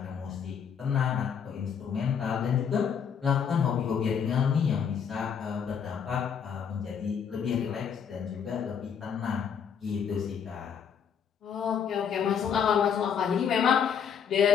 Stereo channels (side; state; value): right; quieter; 7.4 dB